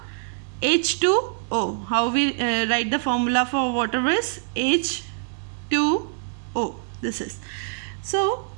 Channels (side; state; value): left; silent; digital silence